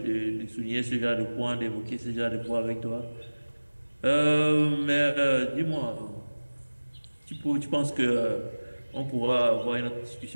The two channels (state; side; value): inverted; both; correlation -1.00